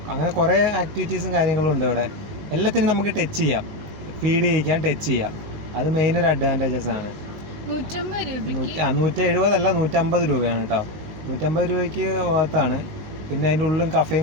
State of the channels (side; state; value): left; late; 19 ms